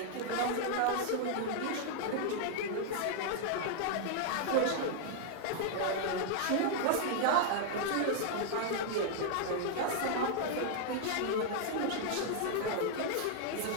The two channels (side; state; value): both; different; correlation 0.00